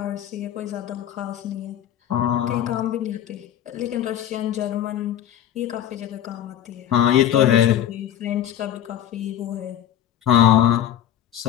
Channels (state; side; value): quieter; right; 11.1 dB